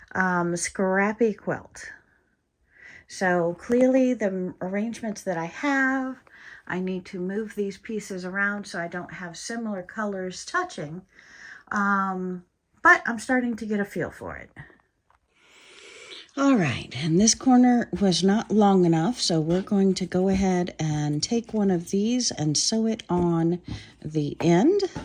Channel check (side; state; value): both; identical; correlation 1.00